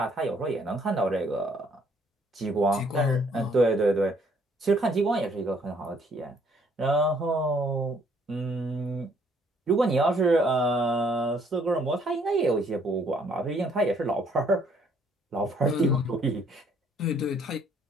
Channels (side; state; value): both; normal; correlation 0.65